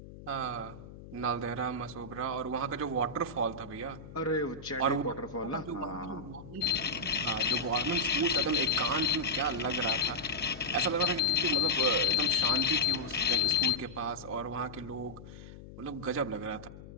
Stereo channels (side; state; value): left; noise; hum, 15 dB below the sound